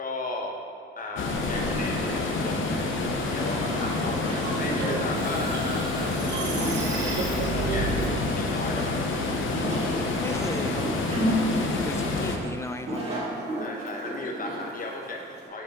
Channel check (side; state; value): both; normal; correlation 0.39